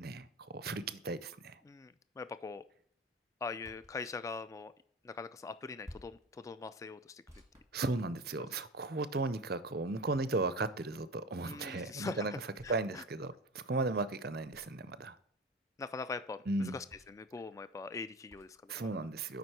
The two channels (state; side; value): normal; both; correlation 0.31